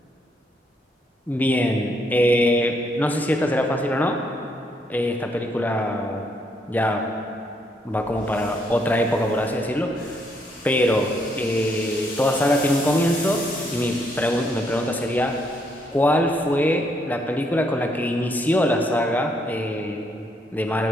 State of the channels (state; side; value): normal; both; correlation 0.73